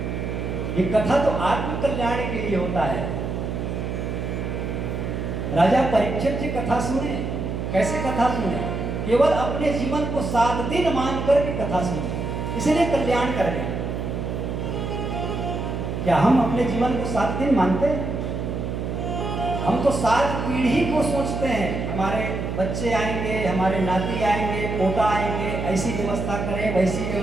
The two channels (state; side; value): noise; right; hum, 3 dB below the sound